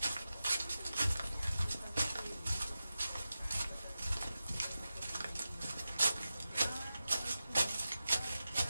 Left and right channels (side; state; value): both; inverted; correlation -0.93